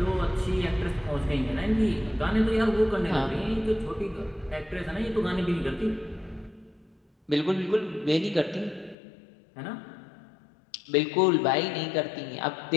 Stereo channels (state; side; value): drops out; right; at 9.0 s